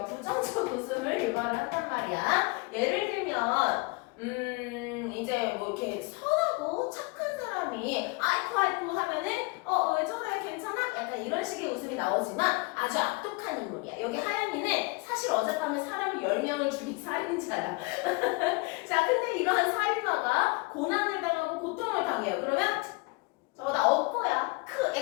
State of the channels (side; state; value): right; quieter; 27.1 dB